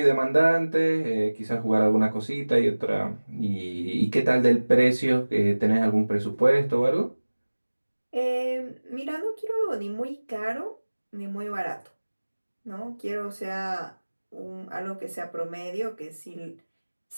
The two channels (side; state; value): both; inverted; correlation -1.00